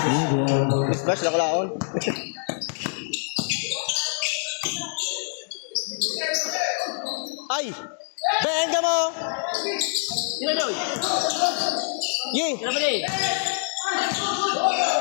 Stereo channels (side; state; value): right; silent; digital silence